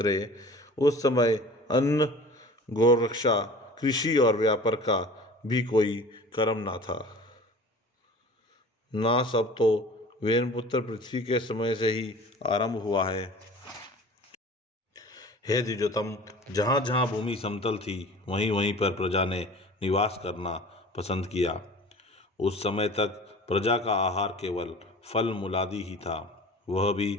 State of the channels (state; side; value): normal; both; correlation 0.42